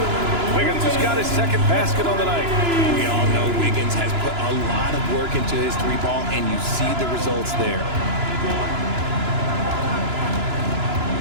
Wiggins has got his second basket on the night. We all know Wiggins has put a lot of work into his three ball, and you see the results there.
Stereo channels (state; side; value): late; left; 2.9 ms